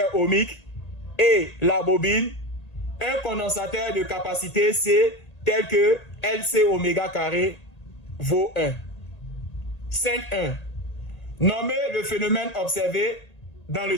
ohmique et la bobine un condensateur de capacité C tel que LC oméga carré vaut 1. 5.1. Nommer le phénomène observé dans le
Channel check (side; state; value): right; late; 1.8 ms